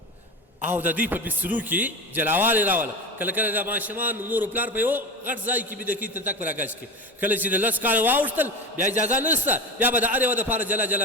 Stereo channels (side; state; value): both; normal; correlation 0.25